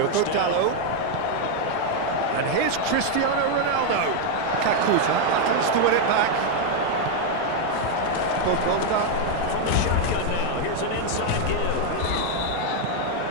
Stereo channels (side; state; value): both; different; correlation 0.01